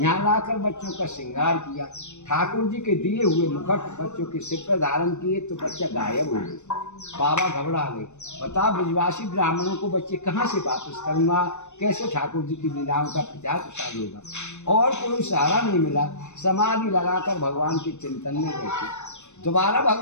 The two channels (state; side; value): late; right; 0.83 ms